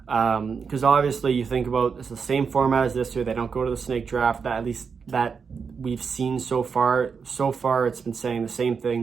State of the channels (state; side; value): quieter; left; 5.8 dB